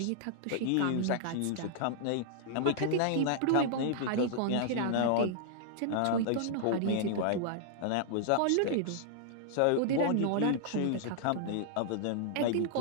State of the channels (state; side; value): different; both; correlation -0.01